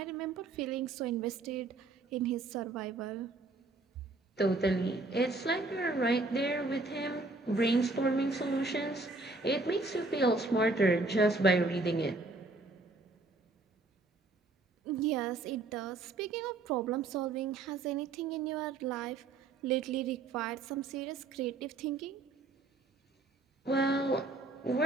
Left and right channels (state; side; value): quieter; left; 3.4 dB